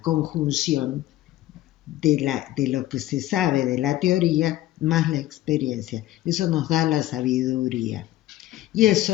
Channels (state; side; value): quieter; right; 14.8 dB